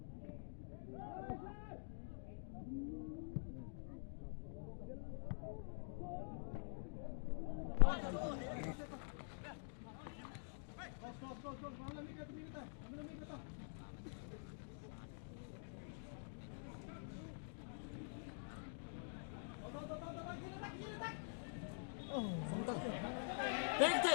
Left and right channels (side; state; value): right; silent; digital silence